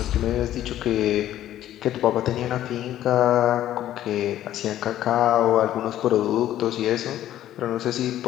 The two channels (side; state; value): right; quieter; 12.5 dB